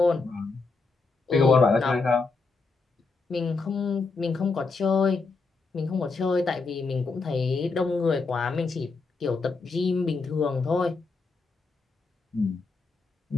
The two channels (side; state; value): right; quieter; 4.1 dB